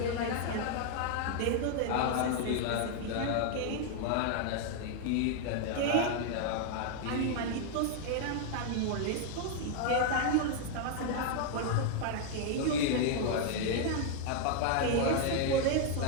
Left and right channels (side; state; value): both; different; correlation 0.00